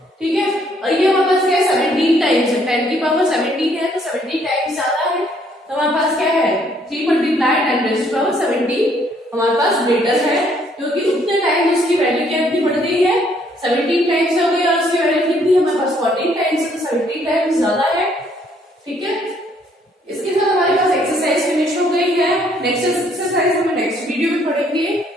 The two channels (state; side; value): normal; both; correlation 0.66